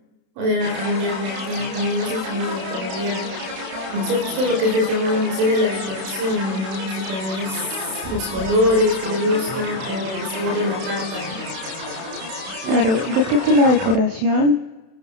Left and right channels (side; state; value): left; late; 31 ms